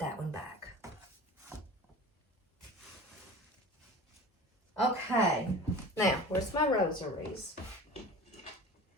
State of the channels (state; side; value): normal; both; correlation 0.37